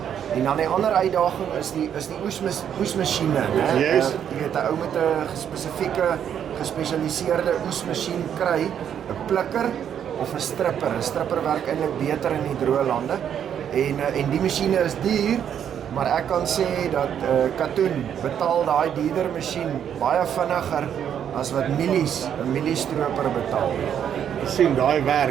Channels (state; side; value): quieter; left; 9.0 dB